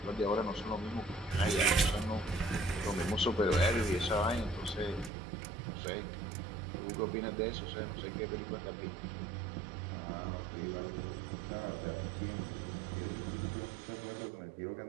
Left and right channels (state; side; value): drops out; left; at 5.1 s